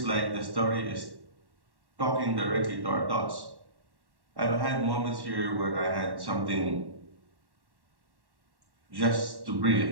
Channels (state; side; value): late; left; 1.1 ms